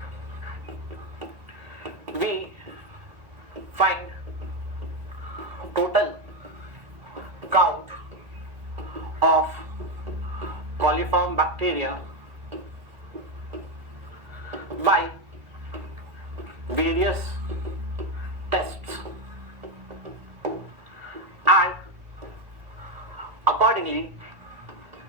we find total coliform bacteria by various tests, and accordingly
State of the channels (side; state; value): left; late; 1.4 ms